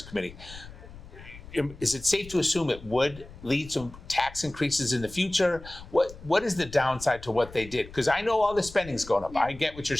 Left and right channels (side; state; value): left; noise; rumble, 17 dB below the sound